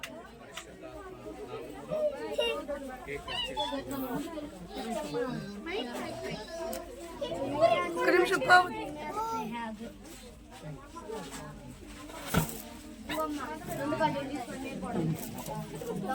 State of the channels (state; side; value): identical; both; correlation 1.00